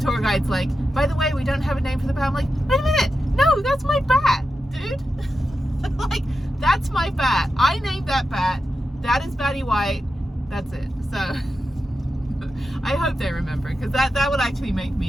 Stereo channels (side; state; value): both; normal; correlation 0.90